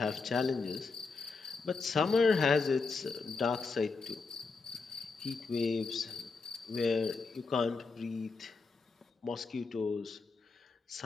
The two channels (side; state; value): right; quieter; 4.4 dB